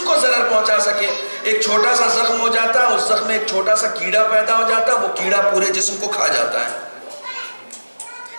کو ضرر پہنچا سکے۔ ایک چھوٹا سا زخم ہو جاتا، اس زخم میں ایک چھوٹا سا کیڑا پیدا ہو جاتا، وہ کیڑا پورے جسم کو کھا جاتا ہے۔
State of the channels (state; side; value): inverted; both; correlation -1.00